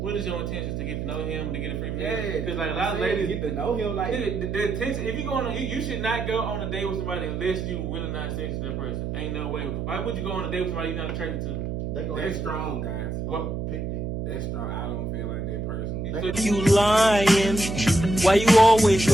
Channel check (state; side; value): noise; right; hum, 3 dB below the sound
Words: what is your intentions to get to know him, to get a free meal? Yeah, because like a lot of ladies get to know him. Like the intention. If you going on, you should not go on a date with somebody unless you really not sexy to the person. Ain't no way. Why would you go on a date with somebody you're not attracted to? That's strong, guys. What? That's strong. I don't feel like that person. You lying? Why you always